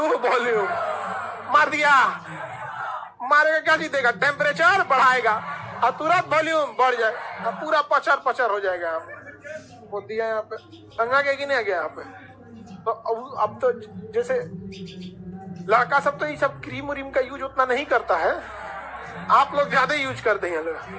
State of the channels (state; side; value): identical; both; correlation 1.00